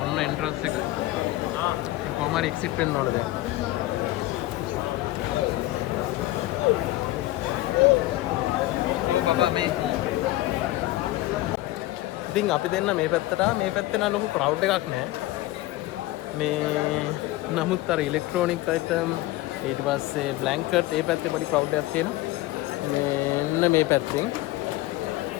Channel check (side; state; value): right; quieter; 17.3 dB